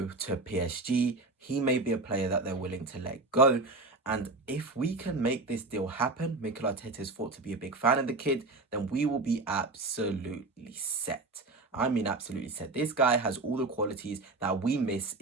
to PSG, he may be a player that they're willing to let go. And if we can make this deal happen, Mikel Arteta is thought to be a big fan of the kid, then we will be absolutely set. I mean, absolutely set. This guy has all the qualities that we miss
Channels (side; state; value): left; quieter; 3.2 dB